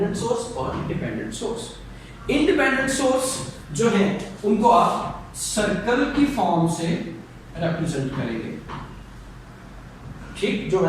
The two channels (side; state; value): both; identical; correlation 1.00